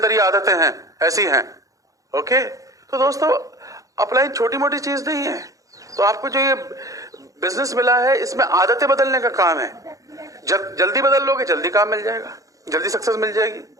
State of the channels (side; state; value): left; late; 0.16 ms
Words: ये आदतें हैं, ऐसी हैं। ओके, तो दोस्तों अपलाइन छोटी मोटी चीज नहीं है। तो आपको जो ये बिजनेस मिला है इसमें आदतें बदलने का काम है। जल्दी बदल लोगे, जल्दी काम मिल जाएगा, जल्दी सक्सेस मिल जाएगी।